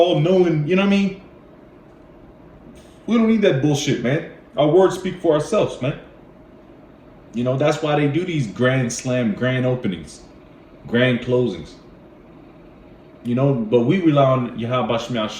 knowing, you know what I mean? We don't need that bullshit, man. Our words speak for ourselves, man. You know, that's why they do these grand slam, grand openings, grand closings. You know, but we rely on Yahweh Shemel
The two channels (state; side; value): identical; both; correlation 1.00